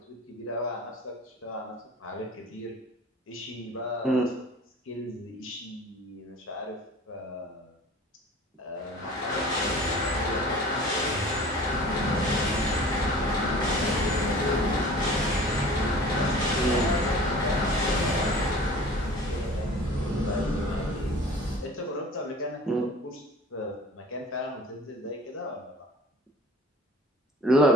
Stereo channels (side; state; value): both; normal; correlation 0.43